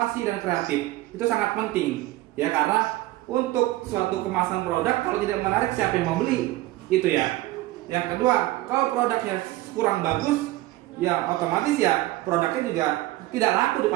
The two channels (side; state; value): left; quieter; 17.5 dB